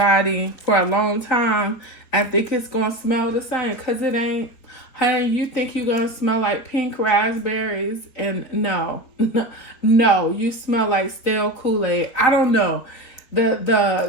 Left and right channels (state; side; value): late; right; 4.5 ms